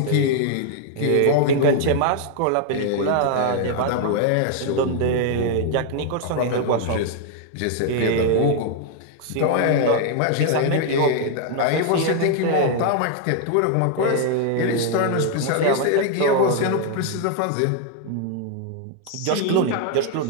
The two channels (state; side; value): different; both; correlation 0.00